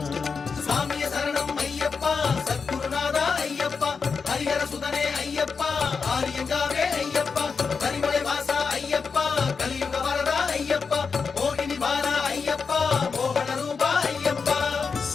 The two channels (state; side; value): quieter; right; 5.3 dB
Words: சாமிய சரணம் ஐயப்பா, சத்குருநாதா ஐயப்பா, ஹரிஹர சுதனே ஐயப்பா, ஆரியங்காவே ஐயப்பா, கரிமலை வாசா ஐயப்பா, கலியுக வரதா ஐயப்பா, மோகினி வாரா ஐயப்பா, மோகன ரூபா ஐயப்பா.